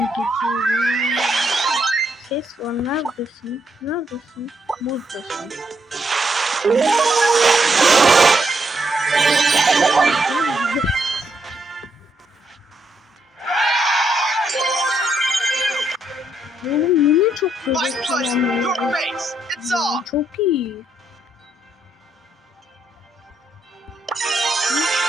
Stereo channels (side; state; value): both; normal; correlation 0.77